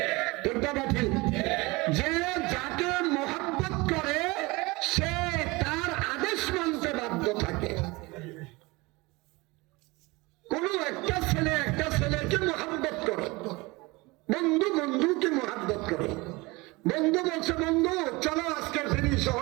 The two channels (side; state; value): left; quieter; 23.6 dB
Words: ঠিক না ঠিক? যে যাকে মহব্বত করে সে তার আদেশ মানতে বাধ্য থাকে। কোন একটা ছেলেকে মহব্বত করে, বন্ধু বন্ধুকে মহব্বত করে। বন্ধু বলছে বন্ধু চলো আজকে ফিরি,